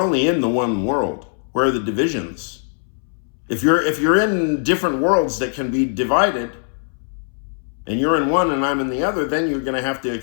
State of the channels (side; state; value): right; silent; 64 dB below the other